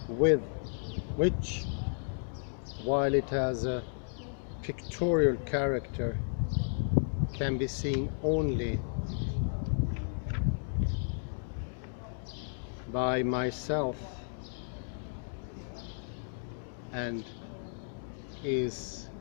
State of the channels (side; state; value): right; silent; digital silence